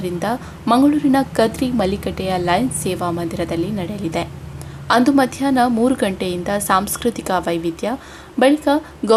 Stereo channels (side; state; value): both; identical; correlation 1.00